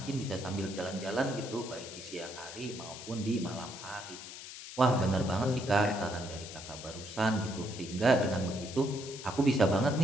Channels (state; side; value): noise; left; hiss, 12 dB below the sound